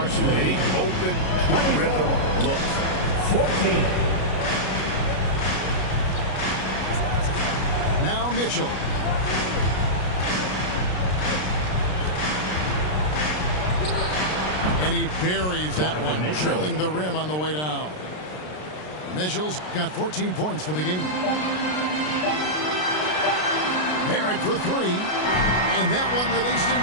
too many open rhythm looks. 14. Now Mitchell. And he buries that one, drilling the rim on the way down. Mitchell's got 14 points for the game. Barrett for 3. And that one released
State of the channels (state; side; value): late; right; 33 ms